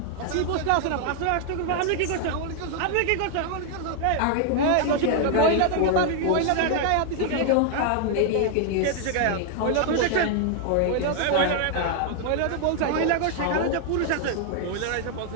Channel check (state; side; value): different; both; correlation 0.00